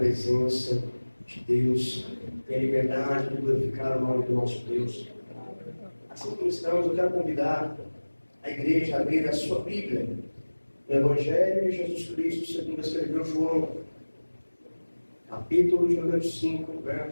de Deus. Tenha liberdade de glorificar o nome do nosso Deus. Assim como estamos, eu quero convidar a igreja a abrir a sua Bíblia no Evangelho de Jesus Cristo, segundo escreveu João, capítulo de número 5,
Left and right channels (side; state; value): both; inverted; correlation -1.00